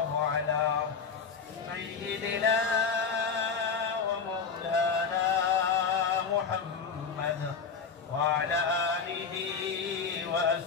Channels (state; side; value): quieter; right; 5.7 dB